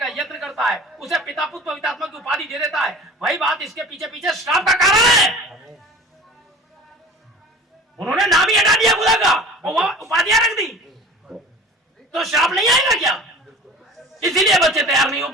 यत्न करता है, उसे पिता पुत्र पवित्र आत्मा की उपाधि दे देता है। वही बात इसके पीछे पीछे श्राप का कारण है। उन्होंने नाम ही हटा दिया खुदा का और वह उपाधियां रख दी, तो श्राप नहीं आएगा क्या? इसीलिए बच्चे तैयार नहीं हो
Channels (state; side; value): normal; both; correlation 0.40